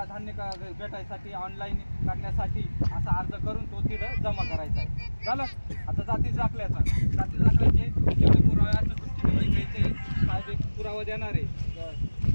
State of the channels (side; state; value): both; inverted; correlation -1.00